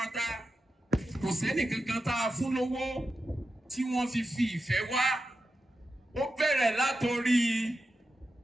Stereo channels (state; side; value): normal; both; correlation 0.89